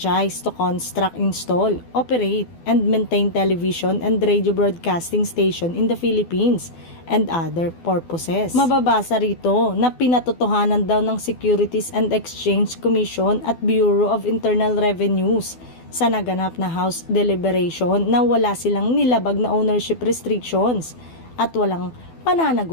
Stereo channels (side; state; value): right; late; 12 ms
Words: to construct, install, operate, and maintain television and radio broadcasting station in the Philippines and other purposes. Mababasa rito na pinatotohanan daw ng Securities and Exchange Commission at Bureau of Internal Revenues sa naganap na House deliberation na wala silang nilabag na ownership restrictions at walang